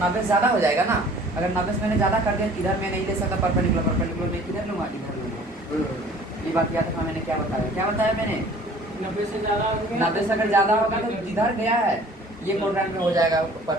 से ज़्यादा हो जाएगा ना, अगर 90 से मैंने ज़्यादा कर दिया, इधर मैं नहीं ले सकता परपेंडिकुलर मैं किधर लूँगा? इधर लूँगा। ये बात याद रखना, मैंने क्या बताया मैंने? 90 से ज़्यादा हो गया। 90 से अगर ज़्यादा होगा तो जिधर गया है ये क्वाड्रेंट में हो जाएगा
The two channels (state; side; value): normal; both; correlation 0.51